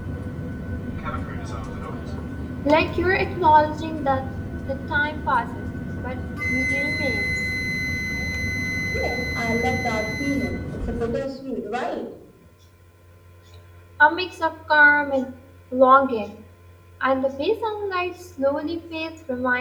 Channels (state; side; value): identical; both; correlation 1.00